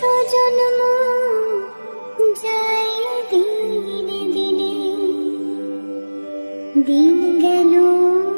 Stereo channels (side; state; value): both; inverted; correlation -1.00